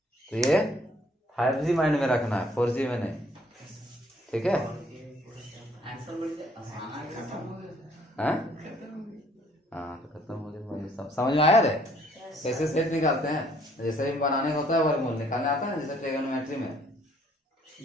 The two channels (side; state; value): both; normal; correlation 0.62